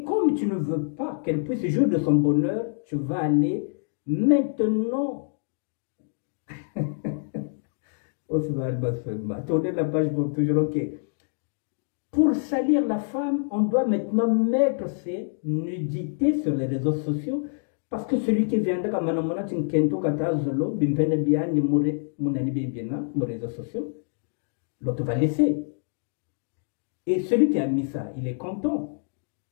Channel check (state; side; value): silent; right; digital silence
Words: comme tu ne veux pas qu'elle puisse jouir de son bonheur, tu vas aller maintenant. Tournez la page pour toujours, ok. Pour salir la femme, on doit maintenant mettre ses nudités sur les réseaux sociaux. Parce que celui qui viendra comme Manamona Tinkento Katazolo, Bimpene Bian, Mounani Bibiana, mon réseaux sociaux, l'autre va laisser. Et celui qui a mis ça, il est content.